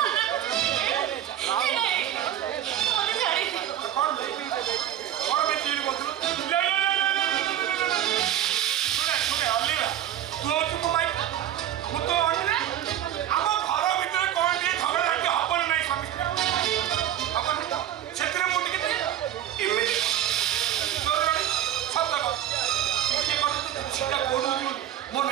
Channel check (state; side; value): quieter; left; 11.6 dB